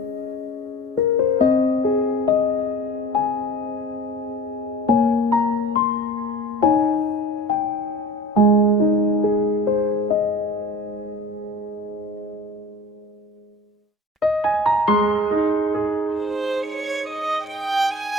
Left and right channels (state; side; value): normal; both; correlation 0.41